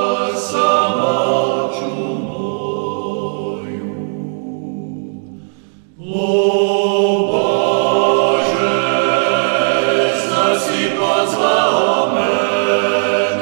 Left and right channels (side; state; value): left; silent; digital silence